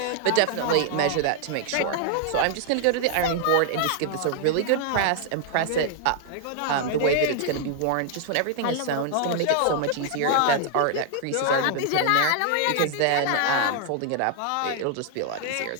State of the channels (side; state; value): both; different; correlation 0.00